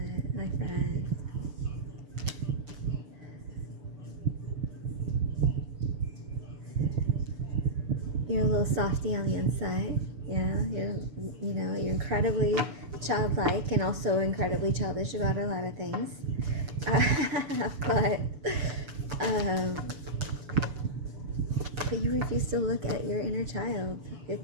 my friend. You're a little softy on the inside. Yeah, you're incredibly childlike and also incredibly childish about a lot of things. But you refuse to look at your inner child. You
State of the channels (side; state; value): left; late; 6.9 ms